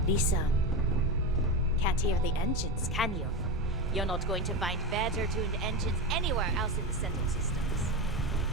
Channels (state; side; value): normal; both; correlation 0.19